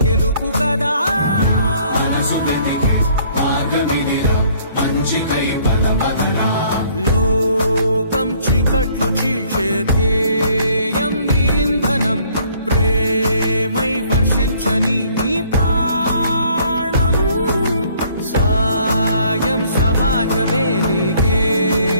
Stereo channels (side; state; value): both; inverted; correlation -0.61